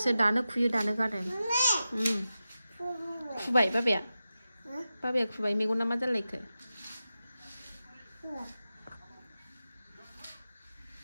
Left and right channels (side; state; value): both; inverted; correlation -0.92